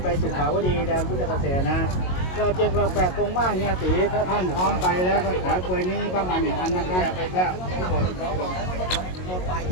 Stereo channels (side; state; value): right; late; 22 ms